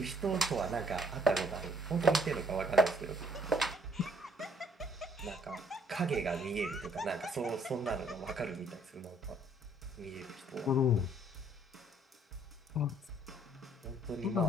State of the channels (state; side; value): normal; both; correlation 0.64